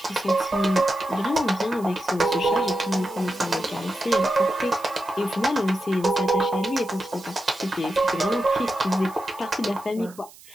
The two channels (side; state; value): right; noise; hiss, 22 dB below the sound